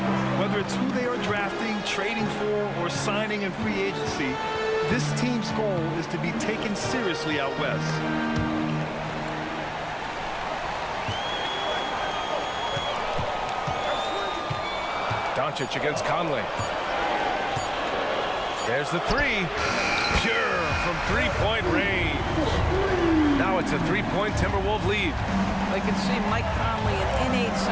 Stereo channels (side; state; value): both; identical; correlation 1.00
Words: Whether it's who they are drafting, trading for, or signing in free agency, this team's goal is to be taken seriously out west. Doncic against Conley. There's the three. Pure from three-point range. Now it's a three-point Timberwolves lead. I can see Mike Conley an innate